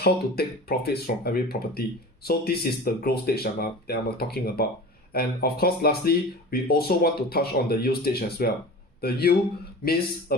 to take profits from every property. So this is the growth stage that I'm talking about. And of course, lastly, we also want to touch on the yield stage as well. The yield means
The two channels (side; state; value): both; normal; correlation 0.35